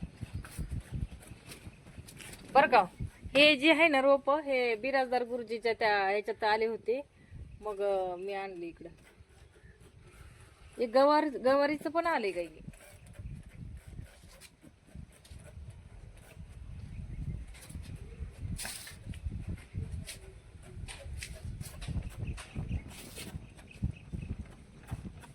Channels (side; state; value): both; identical; correlation 1.00